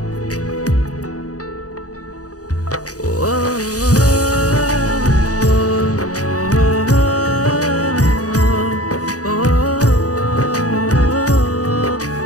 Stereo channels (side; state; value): right; late; 0.67 ms